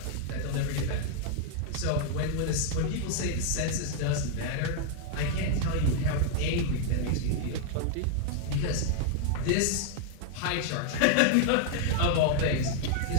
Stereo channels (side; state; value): both; different; correlation 0.00